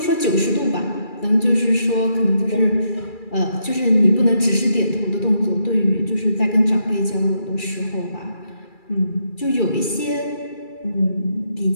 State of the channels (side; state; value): right; late; 2.3 ms